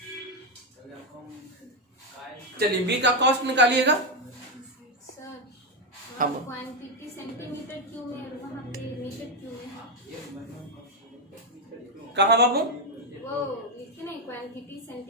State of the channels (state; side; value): normal; both; correlation 0.04